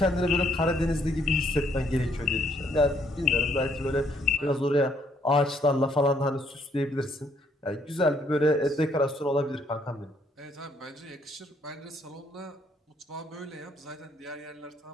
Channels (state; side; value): normal; both; correlation 0.69